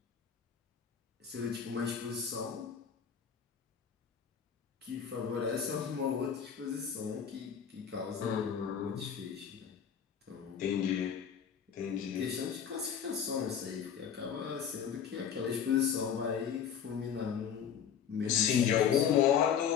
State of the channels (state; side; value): quieter; right; 7.9 dB